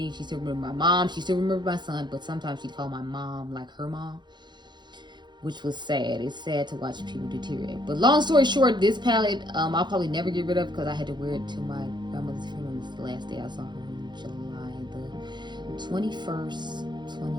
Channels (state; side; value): late; left; 0.21 ms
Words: She still remembered my mom. She still remembered my son. But sometimes she'd call my mom like her mom, which was sad. It's sad to watch people deteriorate. But long story short, this palette, I'll probably never get rid of, because I had to wear it to my grandmother's funeral. This is the last day I saw her, in July 21st,